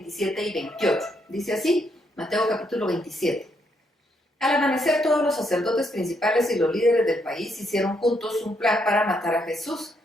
y 28. Dice así, Mateo capítulo 27. Al amanecer, todos los sacerdotes principales y los líderes del país hicieron juntos un plan para matar a Jesús.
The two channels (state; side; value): normal; both; correlation 0.75